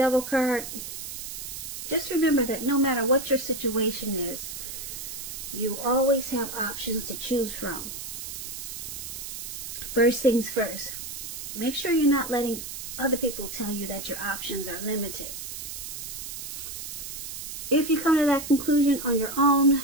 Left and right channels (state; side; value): noise; right; hiss, 8 dB below the sound